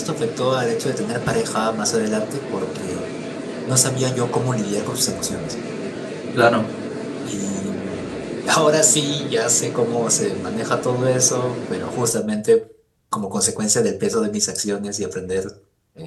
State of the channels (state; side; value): identical; both; correlation 1.00